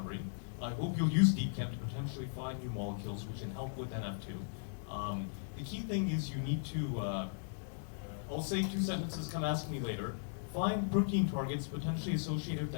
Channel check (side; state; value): right; silent; digital silence